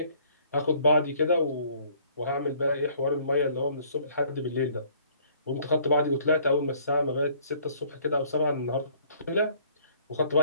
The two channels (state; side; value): inverted; both; correlation -0.59